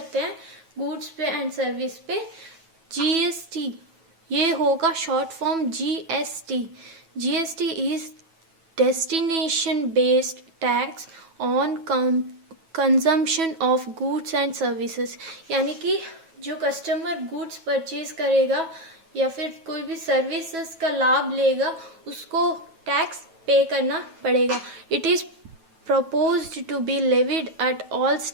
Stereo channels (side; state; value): left; late; 9.2 ms